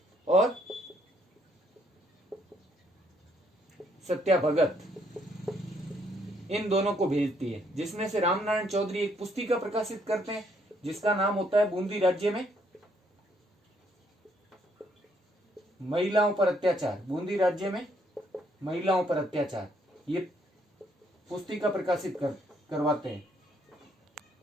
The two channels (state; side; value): normal; both; correlation 0.70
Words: और सत्या भगत, इन दोनों को भेजती है। जिसमें से रामनारायण चौधरी एक पुस्तिका प्रकाशित करते हैं जिसका नाम होता है बूंदी राज्य में महिलाओं पर अत्याचार। बूंदी राज्य में महिलाओं पर अत्याचार, ये पुस्तिका प्रकाशित करवाते हैं।